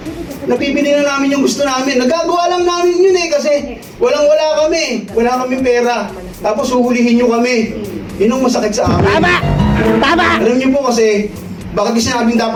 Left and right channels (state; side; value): identical; both; correlation 1.00